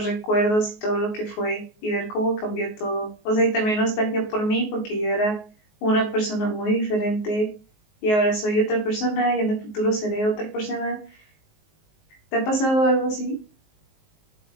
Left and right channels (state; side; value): late; right; 19 ms